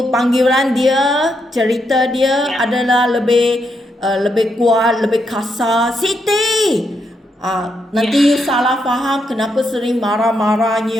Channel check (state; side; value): normal; both; correlation 0.80